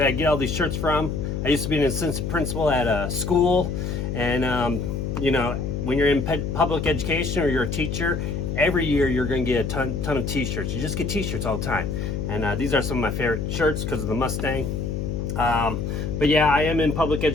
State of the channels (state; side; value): noise; left; hum, 2 dB below the sound